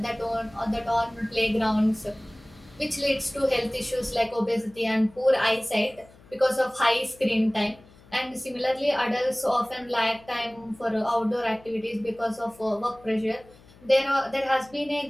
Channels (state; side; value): noise; left; hum, 25 dB below the sound